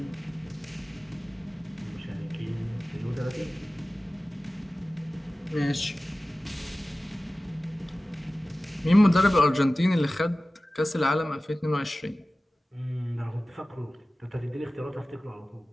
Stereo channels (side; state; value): both; normal; correlation 0.97